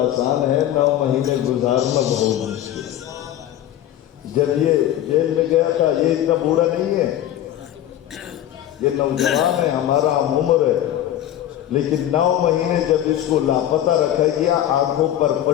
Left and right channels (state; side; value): quieter; right; 12.1 dB